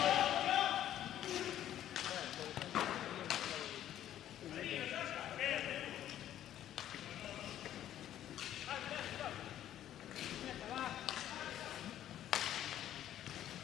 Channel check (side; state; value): right; quieter; 11.7 dB